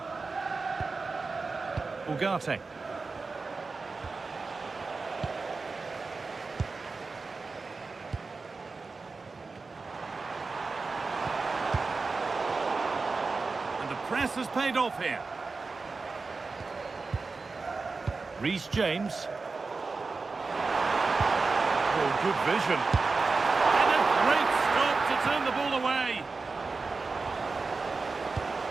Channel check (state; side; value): quieter; left; 4.1 dB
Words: Ugarte. And the press has paid off here. Reece James. Oh, good vision. And a great stop to turn the ball away.